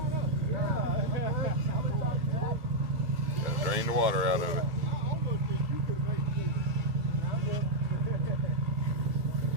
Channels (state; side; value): late; left; 1.6 ms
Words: Gotta drain the water out of it.